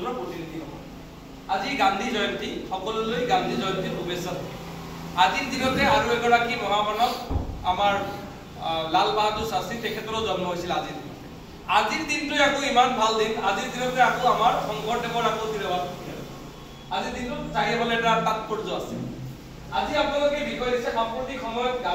প্ৰতিনিধি হ'ব আজি গান্ধী জয়ন্তী সকলোলৈ গান্ধী জয়ন্তীৰ শুভেচ্ছা আজিৰ দিনতে আৰু এগৰাকী মহামানৱ আমাৰ লাল বাহাদুৰ শাস্ত্ৰী তেখেতৰো জন্ম হৈছিল আজিৰ দিনতে আজিৰ দিনটো আকৌ ইমান ভাল দিন আজিৰ দিনতে আকৌ আমাৰ শংকৰদেৱৰ আকৌ তিৰবাদ আজিৰ দিনটো চাৰিফালে এটা তাৎপৰ্য আছে আজি আপোনালোকে বিষয় দিছে সাম্প্ৰতিক সময়ত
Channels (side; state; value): both; identical; correlation 1.00